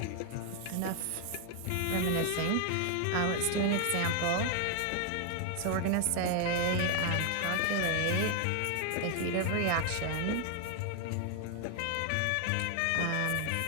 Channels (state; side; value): different; both; correlation 0.00